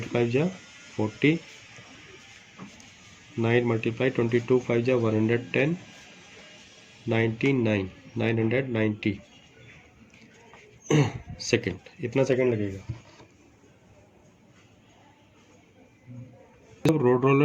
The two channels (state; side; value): identical; both; correlation 1.00